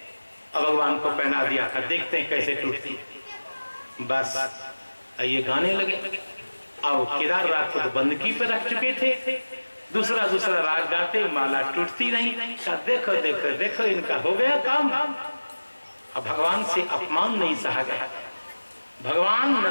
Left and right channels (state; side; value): inverted; both; correlation -1.00